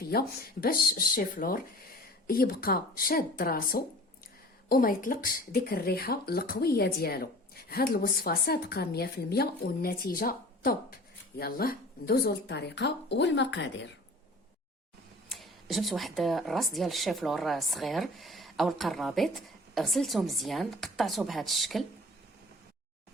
باش الشيفلور يبقى شاد راسو وما يطلقش ديك الريحه القويه ديالو. هاد الوصفه صادقه 100% والنتيجه توب. يلا ندوزو للطريقه والمقادير. جبت واحد الراس ديال الشيفلور صغير او القرابيط، غسلته مزيان، قطعته بهذا الشكل،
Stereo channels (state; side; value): normal; both; correlation 0.43